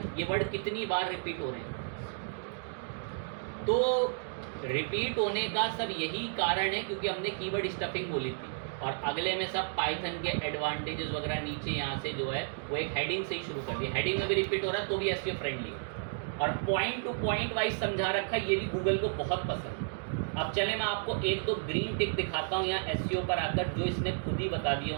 ये वर्ड कितनी बार रिपीट हो रहे हैं। तो रिपीट होने का सब यही कारण है क्योंकि हमने कीवर्ड स्टफिंग बोली थी, और अगले में सब पाइथन के एडवांटेजेस वगैरह नीचे यहाँ से जो है वो एक हेडिंग से ही शुरू कर दिया। हेडिंग में भी रिपीट हो रहा है तो भी एसईओ फ्रेंडली, और पॉइंट टू पॉइंट वाइज समझा रखा है, ये भी गूगल को बहुत पसंद है। अब चले मैं आपको एक दो ग्रीन टिक दिखाता हूँ यहाँ एसईओ पर आकर, जो इसने खुद ही बता दिए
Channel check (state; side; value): silent; left; digital silence